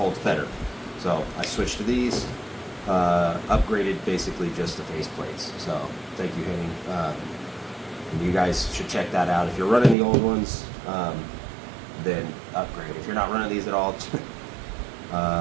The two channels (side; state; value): left; drops out; at 10.0 s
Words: better. So I switched to these, upgraded basically just the face plates. So thank you, Henning. And you guys should check that out. If you're running the old ones, then upgrade. If you're not running these at all,